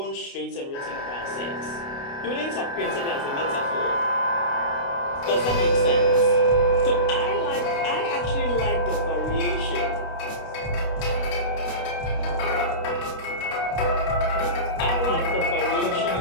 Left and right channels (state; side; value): late; right; 29 ms